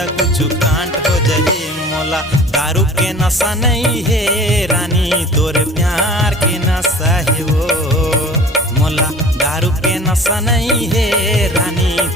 कुछ कांट हो जही। मोला दारू के नशा नहीं है रानी, तोरे प्यार के नशा है वो। मोला दारू के नशा नहीं है रानी,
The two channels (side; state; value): both; normal; correlation 0.44